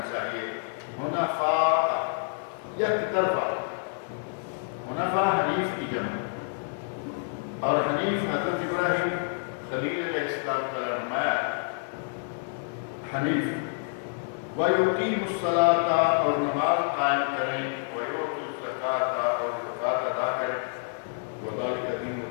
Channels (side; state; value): right; silent; 58 dB below the other